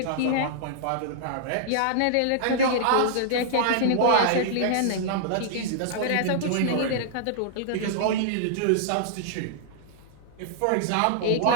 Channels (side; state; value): both; different; correlation -0.01